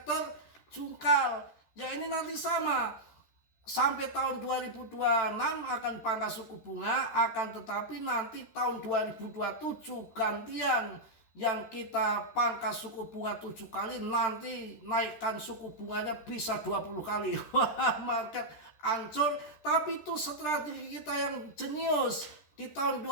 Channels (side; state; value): right; late; 13 ms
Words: jungkal. Ya ini nanti sama. Sampai tahun 2026 akan pangkas suku bunga, akan tetapi nanti tahun 2027 gantian. Yang kita pangkas suku bunga 7 kali, nanti naikkan suku bunganya bisa 20 kali. Wah, market hancur. Tapi itu strategi kita yang jenius. Di tahun